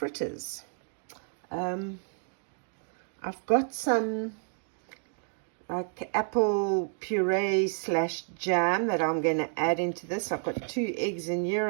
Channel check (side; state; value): left; silent; 58 dB below the other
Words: I've got some like apple puree / jam that I'm going to add into this. I've got 2 eggs in here.